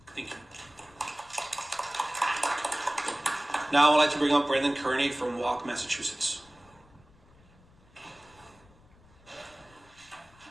Thank you. Now I'd like to bring up Brandon Kearney from Walk, Massachusetts.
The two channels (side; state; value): left; noise; rumble, 27 dB below the sound